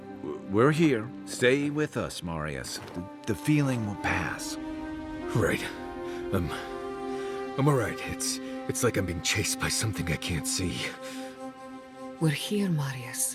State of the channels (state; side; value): identical; both; correlation 1.00